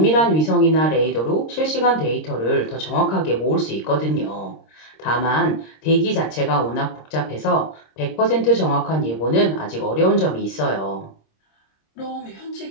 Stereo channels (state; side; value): late; right; 26 ms